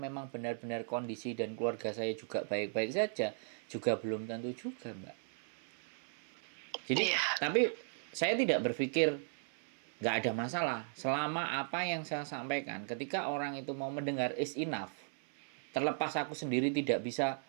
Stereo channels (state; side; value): silent; left; 53 dB below the other